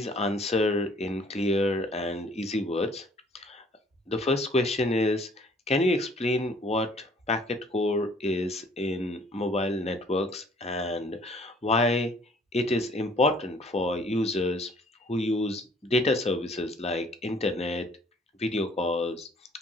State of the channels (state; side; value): normal; both; correlation 0.57